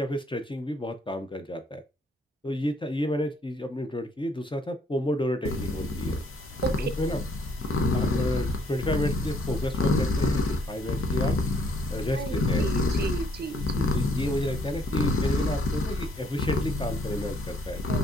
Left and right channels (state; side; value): normal; both; correlation 0.67